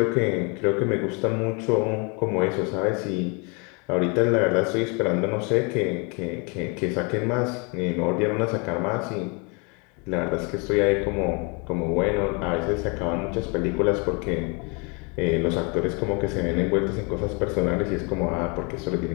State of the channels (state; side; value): quieter; right; 32.3 dB